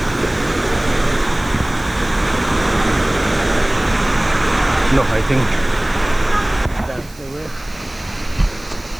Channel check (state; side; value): noise; right; hiss, 23 dB below the sound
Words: No, I think that's the way.